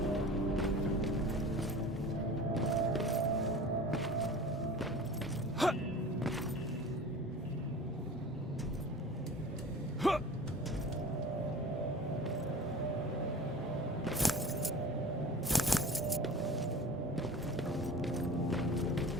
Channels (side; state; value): both; normal; correlation 0.40